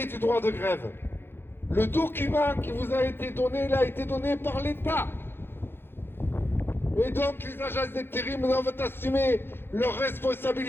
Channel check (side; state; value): right; late; 0.11 ms